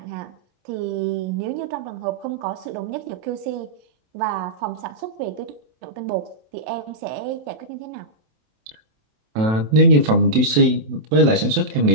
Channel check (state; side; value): late; left; 27 ms